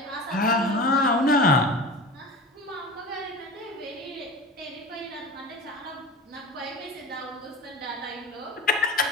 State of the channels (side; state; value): both; normal; correlation 0.33